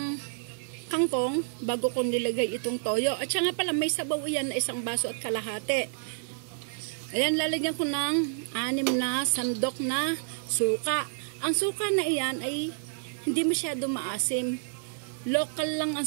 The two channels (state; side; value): silent; left; 58 dB below the other